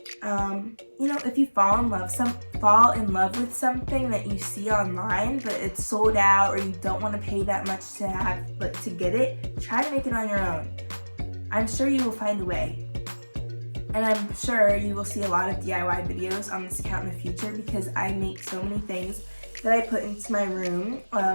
You know, if you fall in love with something that you see online, but it's sold out or you don't want to pay that much to get it, try to make it on your own. I'm sure you will find a way. And I'm sure you will see a lot of DIY videos on this account in the future because I make so many things that I put into my room.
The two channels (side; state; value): both; inverted; correlation -1.00